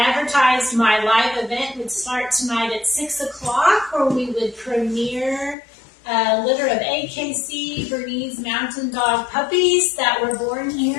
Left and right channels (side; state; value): right; drops out; at 5.6 s